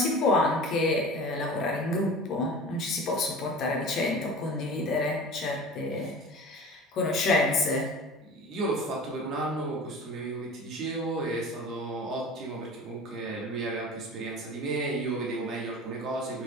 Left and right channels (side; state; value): both; normal; correlation 0.37